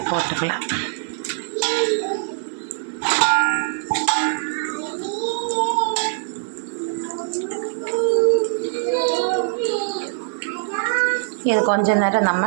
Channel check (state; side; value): silent; left; 64 dB below the other